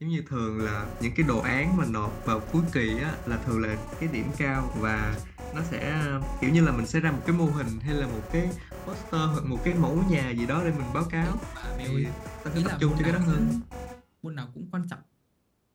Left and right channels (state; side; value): identical; both; correlation 1.00